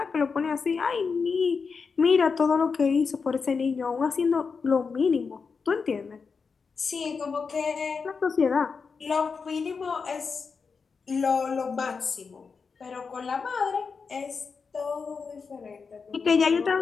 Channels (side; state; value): right; quieter; 5.2 dB